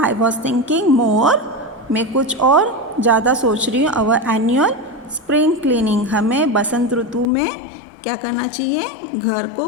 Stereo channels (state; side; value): drops out; right; at 7.2 s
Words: I was thinking more, मैं कुछ और ज़्यादा सोच रही हूँ, our annual spring cleaning, हमें बसंत ऋतु में क्या करना चाहिए, घर को